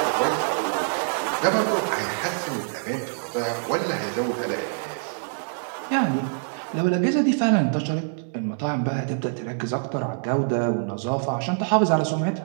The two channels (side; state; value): left; silent; 62 dB below the other